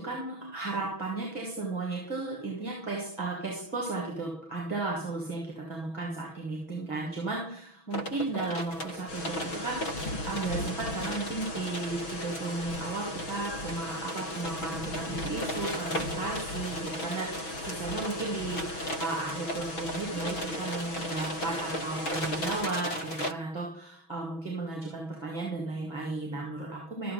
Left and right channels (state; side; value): late; right; 6.1 ms